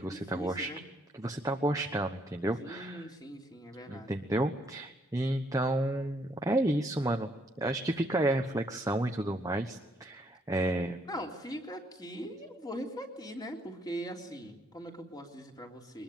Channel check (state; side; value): normal; both; correlation 0.71